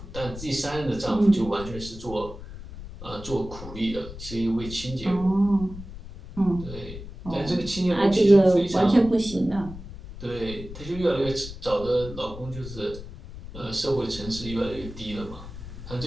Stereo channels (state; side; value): noise; left; rumble, 12 dB below the sound